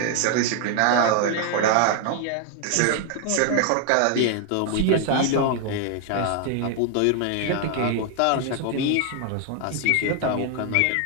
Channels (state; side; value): different; both; correlation 0.00